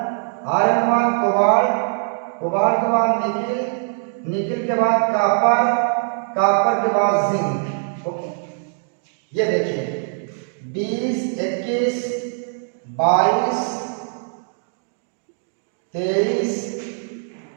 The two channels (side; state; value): left; silent; digital silence